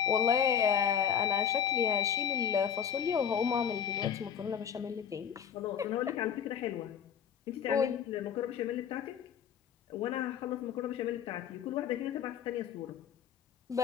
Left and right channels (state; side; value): quieter; right; 8.3 dB